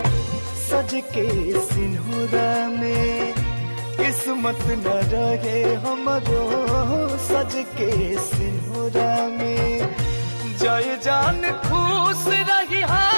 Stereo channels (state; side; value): inverted; both; correlation -1.00